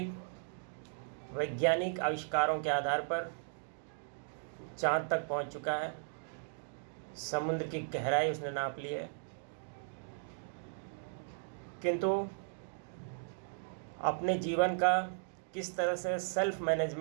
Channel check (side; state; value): left; silent; digital silence